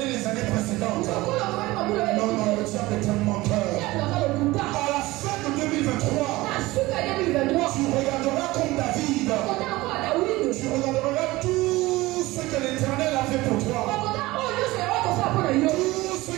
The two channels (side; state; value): left; quieter; 19.6 dB